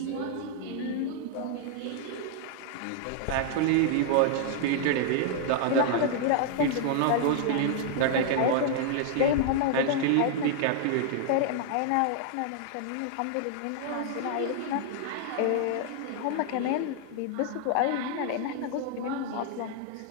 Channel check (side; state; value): both; different; correlation 0.00